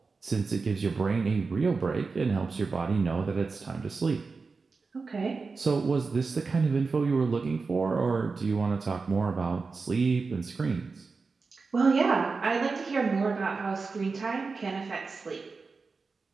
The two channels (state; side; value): quieter; left; 4.4 dB